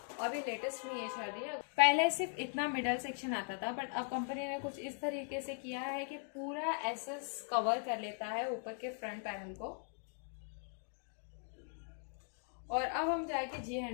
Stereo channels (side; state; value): right; silent; 51 dB below the other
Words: अभी लेटेस्ट में ये चल रही है। पहले सिर्फ इतना मिडल सेक्शन आता था, बट अब कंपनी ने कुछ इस तरीके से किया है कि पूरा एसएस कवर कर लेता है ऊपर के फ्रंट पैनल को। और अब हम जाएंगे जी